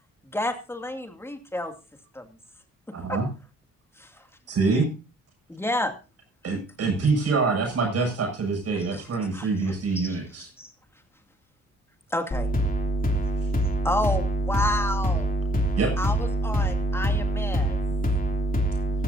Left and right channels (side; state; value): both; normal; correlation 0.60